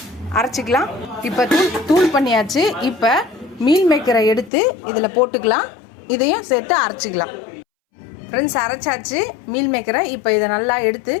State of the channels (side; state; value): right; drops out; at 4.5 s